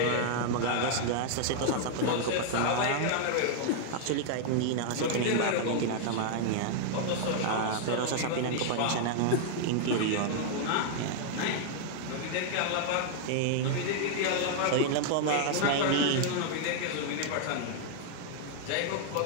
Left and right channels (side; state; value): both; different; correlation -0.01